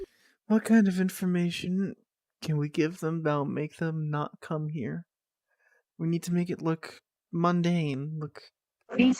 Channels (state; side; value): identical; both; correlation 1.00